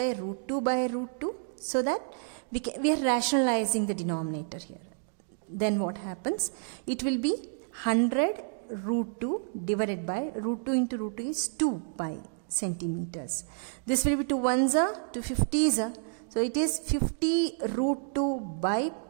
root 2 by root 2, so that we are rationalizing the denominator here. Then what happens? It will be 100 root 2 divided by root 2 into root 2 is 2 pi centimeters. This will be 2 ones are 2 50s are. So it is 50 root 2 by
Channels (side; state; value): left; silent; digital silence